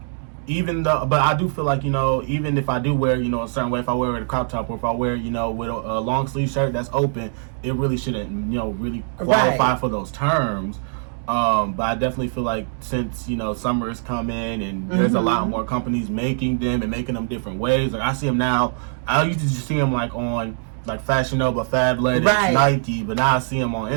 but I do feel like, even if I do wear, a certain way, if I wear it a crop top or if I wear, with a long sleeve shirt that's open, it really shouldn't, really qualify for those terms. But I definitely feel like since, summer is coming and there's a lot more companies making them and making them different ways. Like I see them now. I used to just see them like on like Fashion Nova, Fabletics, Nike, but now I see them on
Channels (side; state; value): left; silent; digital silence